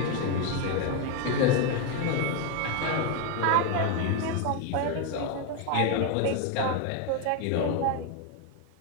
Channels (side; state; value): both; different; correlation 0.01